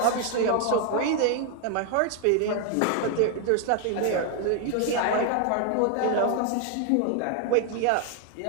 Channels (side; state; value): both; different; correlation 0.00